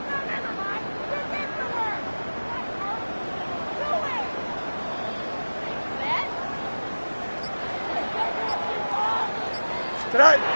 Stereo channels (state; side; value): inverted; both; correlation -1.00